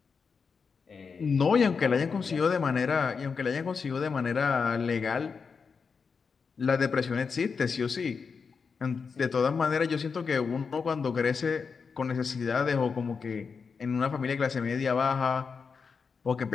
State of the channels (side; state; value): right; quieter; 5.5 dB